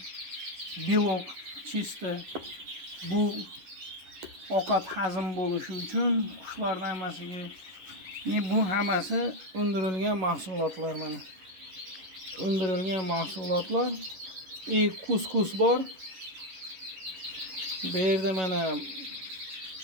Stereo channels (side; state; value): left; late; 11 ms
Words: belok chista. Bu ovqat hazm bo'lishi uchun qushlarning hammasiga bu hammasi undirilgan mahsulotlar mana. Undirilgan mahsulotlar. Kuskus bor. Bu yerda mana